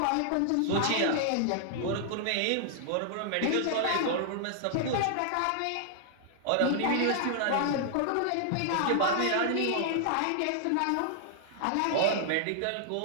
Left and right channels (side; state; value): both; different; correlation -0.01